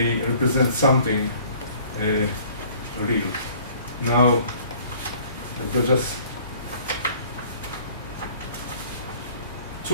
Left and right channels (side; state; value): both; inverted; correlation -0.54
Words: represent something real. Now, let's just